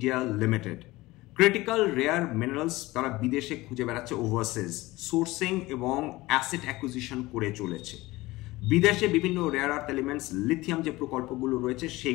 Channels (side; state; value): right; quieter; 19.7 dB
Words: limited. Critical rare minerals তারা বিদেশে খুঁজে বেড়াচ্ছে, ওভারসিজ সোর্সিং এবং অ্যাসেট অ্যাকুইজিশন করে চলেছে। বিদেশে বিভিন্ন রেয়ার আর্থ এলিমেন্টস, লিথিয়াম যে প্রকল্পগুলো রয়েছে